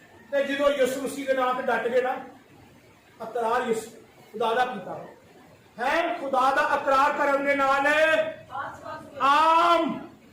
ते जो यीशु मसीह के नाम से डट गए ना, अकरार यीशु खुदा दा कीता है। खुदा दा अकरार करने नाल आम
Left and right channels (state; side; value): identical; both; correlation 1.00